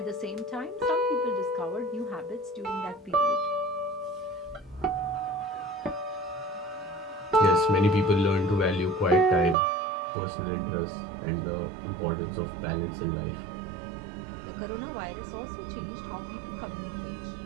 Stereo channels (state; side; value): drops out; left; at 9.6 s